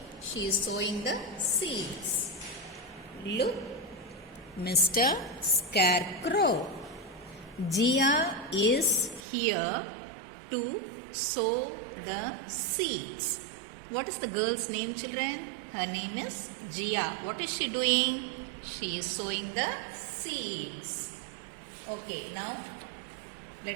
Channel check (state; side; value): drops out; left; at 9.2 s